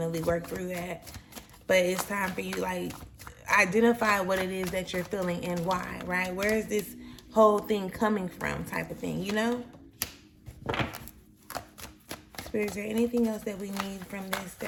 work through that. But it's time for you, like, identify what it is that you're feeling and why, right? Where is this whole thing coming from, type of thing, you know? Spirit, is there anything else that we need from this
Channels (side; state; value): both; identical; correlation 1.00